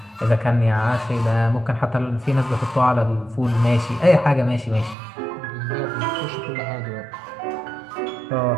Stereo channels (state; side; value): drops out; left; at 5.0 s